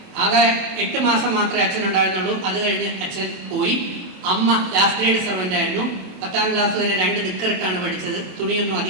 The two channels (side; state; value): left; late; 27 ms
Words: ആകെ 8 മാസം മാത്രമേ അച്ഛൻ ഉണ്ടായിരുന്നുള്ളൂ. അത് കഴിഞ്ഞ് അച്ഛൻ പോയി. അമ്മ ലാസ്റ്റ് ഗ്രേഡ് സെർവൻ്റ് ആയിരുന്നു. 10ാം ക്ലാസ് വരെ 2 നിക്കറിട്ടാണ് പഠിച്ചത്. തുണിയൊന്നും